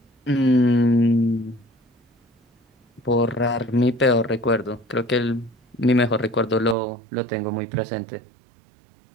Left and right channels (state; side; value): drops out; left; at 6.8 s